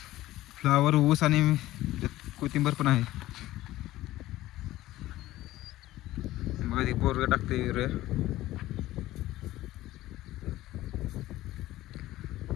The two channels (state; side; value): quieter; right; 15.9 dB